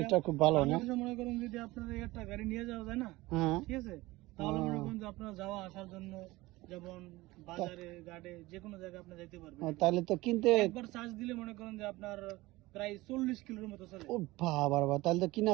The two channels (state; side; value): quieter; left; 19.7 dB